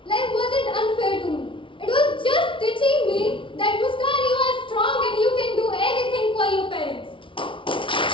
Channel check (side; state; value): right; late; 0.25 ms